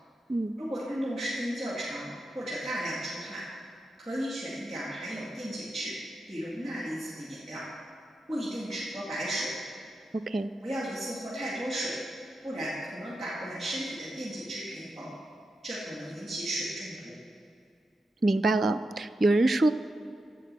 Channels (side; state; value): both; normal; correlation 0.88